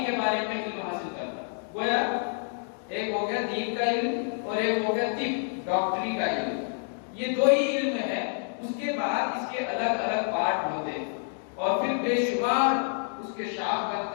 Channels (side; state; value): right; silent; 59 dB below the other